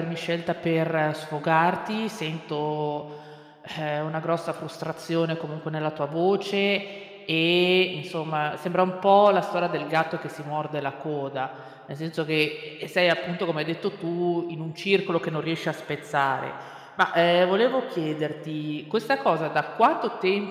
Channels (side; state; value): both; identical; correlation 1.00